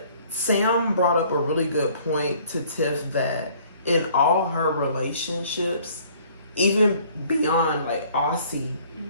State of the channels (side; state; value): both; inverted; correlation -0.57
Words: Sam brought up a really good point to Tiff that in all her relationships, even beyond like Aussie,